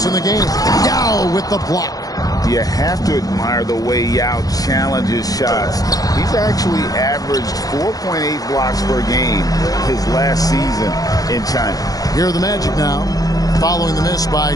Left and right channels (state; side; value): late; right; 0.18 ms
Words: in the game. Yao with the block. You have to admire the way Yao challenges shots. He's actually averaged 4.8 blocks per game his last season in China. Here are the Magic now, following the miss by